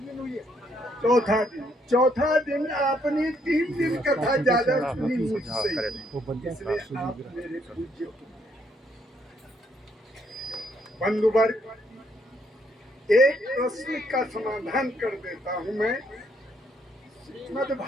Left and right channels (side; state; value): both; normal; correlation 0.71